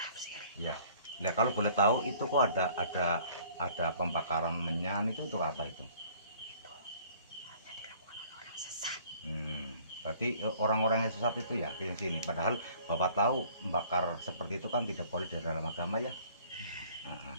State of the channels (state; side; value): inverted; both; correlation -0.54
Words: Ya, nah kalau boleh tahu itu kok ada pembakaran menyan itu untuk apa itu? Itu hanya dilakukan oleh orang sesat. Berarti orang-orang yang sesat itu ya yang sini. Padahal Bapak tahu membakar seperti itu kan tidak boleh di dalam agama ya.